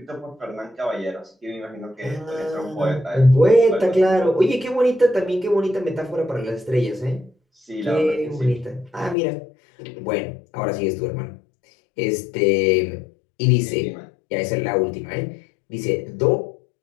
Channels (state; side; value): drops out; right; at 9.2 s